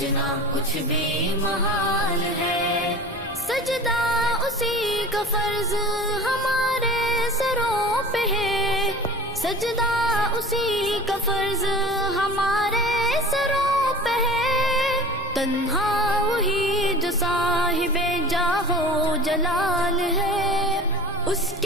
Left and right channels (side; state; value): both; normal; correlation 0.38